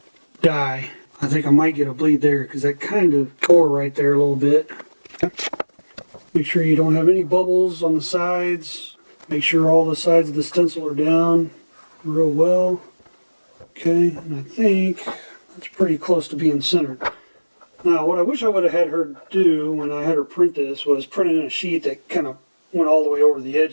dye. I think I might get a bleed there because that kind of tore right there a little bit. Make sure you don't have any bubbles on the sides. Make sure all the sides of the stencil are down real well. Okay, and I think that's pretty close to being centered. Now, what I wish I would have had her do when I had her print this was print it in a sheet that kind of went all the way over the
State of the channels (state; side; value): inverted; both; correlation -1.00